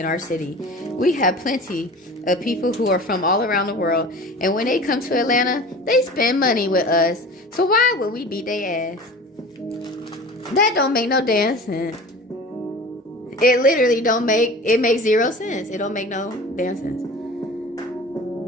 our city. We have plenty of people who are from all around the world. And when they come to Atlanta, they spend money with us. So why would we beat their ass? That don't make no damn sense. It literally it makes 0 sense. It don't make no damn sense.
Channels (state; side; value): normal; both; correlation 0.38